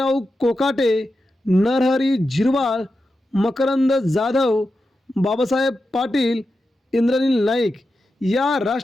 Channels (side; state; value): both; normal; correlation 0.90